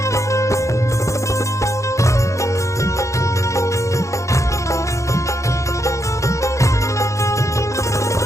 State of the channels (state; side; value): late; right; 0.15 ms